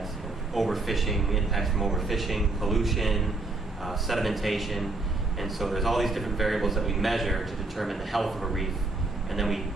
overfishing, impacts from overfishing, pollution, sedimentation, and so there's all these different variables that we measure to determine the health of a reef, and then we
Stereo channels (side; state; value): left; quieter; 3.3 dB